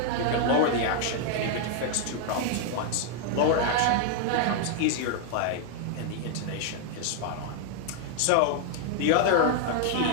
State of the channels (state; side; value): different; both; correlation 0.00